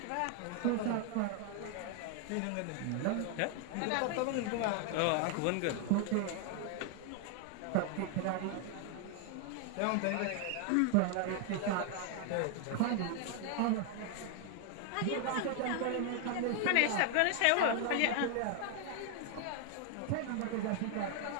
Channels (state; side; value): different; both; correlation 0.00